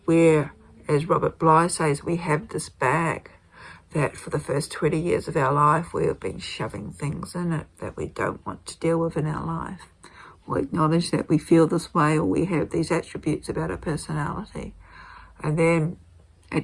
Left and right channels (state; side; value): identical; both; correlation 1.00